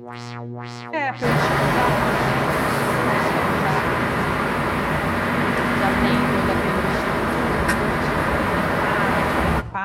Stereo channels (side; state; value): both; identical; correlation 1.00